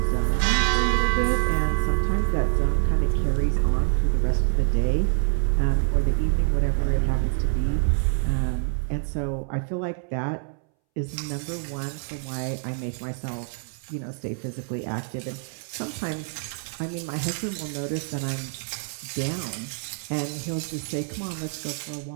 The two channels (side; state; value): left; silent; 61 dB below the other